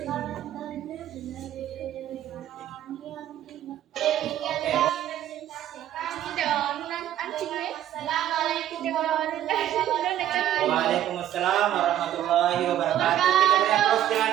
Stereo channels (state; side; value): quieter; left; 11.8 dB